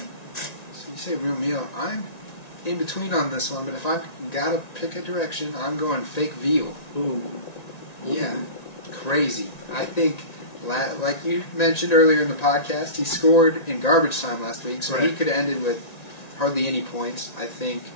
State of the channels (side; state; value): right; late; 1.9 ms